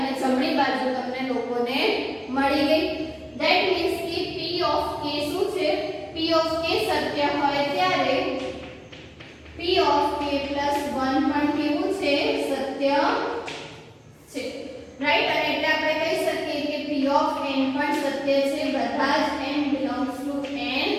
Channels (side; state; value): both; identical; correlation 1.00